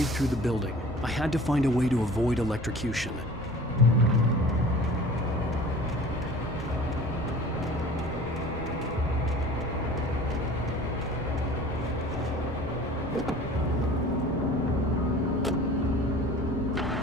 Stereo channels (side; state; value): both; normal; correlation 0.43